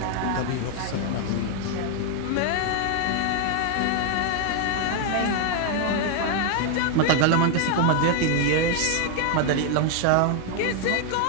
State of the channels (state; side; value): different; both; correlation 0.00